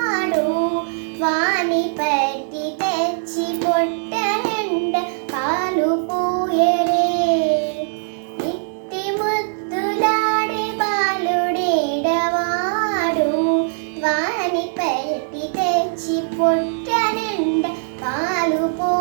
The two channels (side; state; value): left; silent; 65 dB below the other